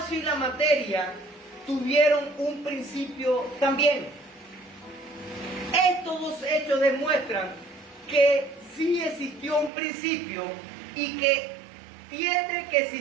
y la materia tuvieron un principio también. Estos dos hechos demuestran que sí existió un principio y que tiene que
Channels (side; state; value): left; drops out; at 9.7 s